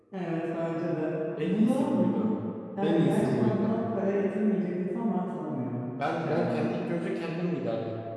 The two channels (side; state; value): both; identical; correlation 1.00